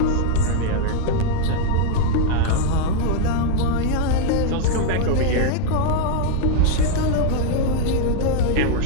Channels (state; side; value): different; both; correlation 0.00